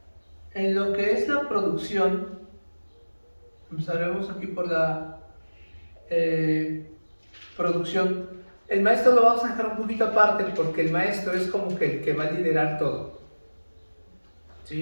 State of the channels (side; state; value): both; inverted; correlation -1.00